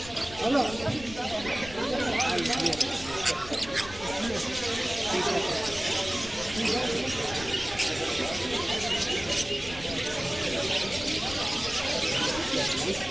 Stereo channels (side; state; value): left; noise; rumble, 15 dB below the sound